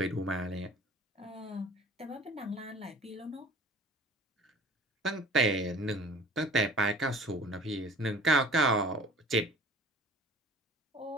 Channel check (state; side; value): normal; both; correlation 0.46